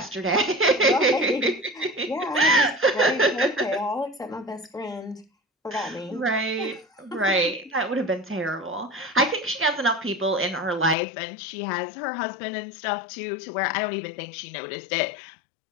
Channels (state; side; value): drops out; right; at 11.0 s